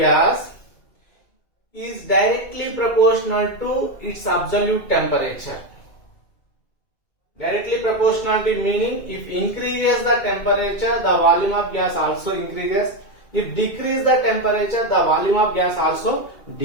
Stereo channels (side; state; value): right; late; 2.3 ms